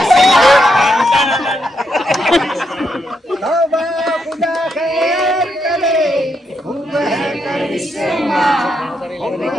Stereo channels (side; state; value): both; normal; correlation 0.80